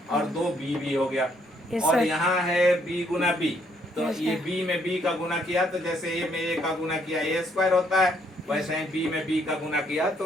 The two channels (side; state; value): both; normal; correlation 0.69